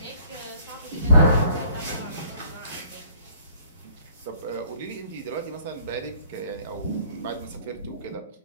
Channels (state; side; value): inverted; both; correlation -0.58